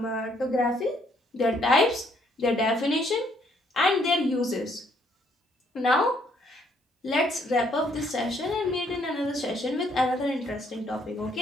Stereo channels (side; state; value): both; normal; correlation 0.68